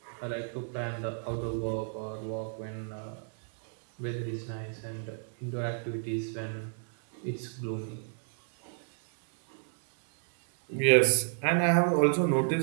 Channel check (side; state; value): left; silent; digital silence